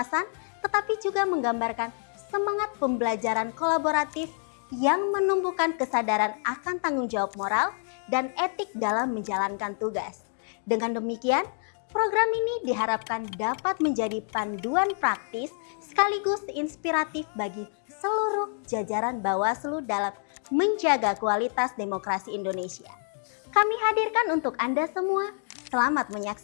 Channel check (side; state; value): right; silent; 55 dB below the other